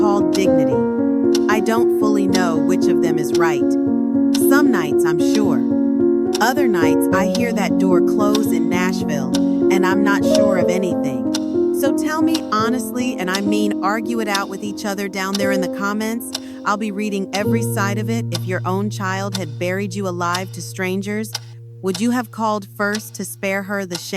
dignity. I don't fully know which of them is right. Some nights I'm sure. Other nights I hear that door close in Nashville and I'm not sure of anything. So tell me honestly, and I mean argue it out with each other down there in the comments. I'll be reading every side of it. If your own child had buried you alive to strangers, would you have called first to spare her the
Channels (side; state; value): both; identical; correlation 1.00